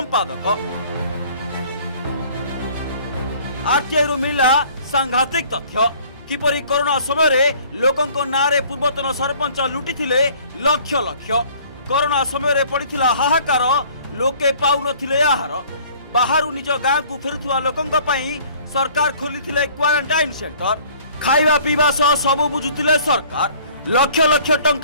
आरटीआई रु मिला सांघातिक तथ्य किपरि कोरोना समय रे लोकंक नारे पूर्वतन सरपंच लुटिथिले लक्ष लक्ष। कोरोना समय रे पड़िथिला हाहाकार, लोके पाउ नथिले आहार। बाहरु निज गाँ को फेरुथुवा लोकंक पई सरकार खोलिथिले क्वारंटाइन सेंटर। खाइबा पीवा सह सबु बुझुथिले सरकार। लक्ष लक्ष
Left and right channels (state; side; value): inverted; both; correlation -0.54